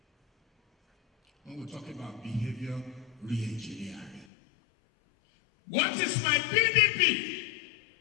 When we talk about behavior re-engineering. What is my PDP?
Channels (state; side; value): drops out; right; at 4.2 s